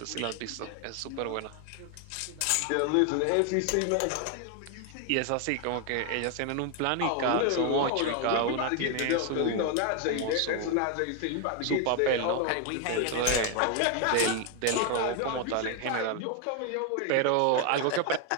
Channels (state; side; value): different; both; correlation 0.01